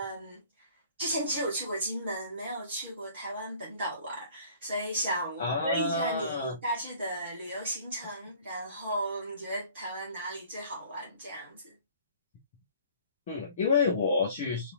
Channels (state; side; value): inverted; both; correlation -0.52